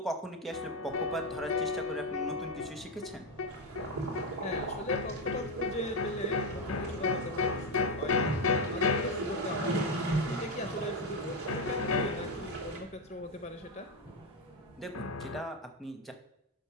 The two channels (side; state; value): both; normal; correlation 0.07